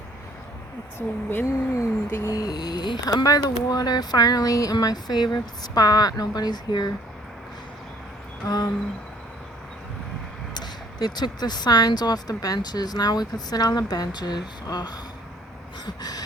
It's windy. I'm by the water finally in my favorite spot. Nobody's here. They took the signs off the benches. Now we could sit on the benches. Ugh.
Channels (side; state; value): both; normal; correlation 0.59